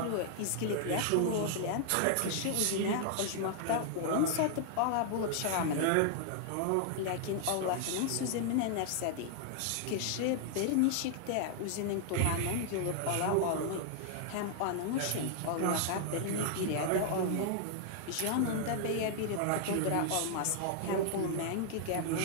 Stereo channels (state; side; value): different; both; correlation 0.00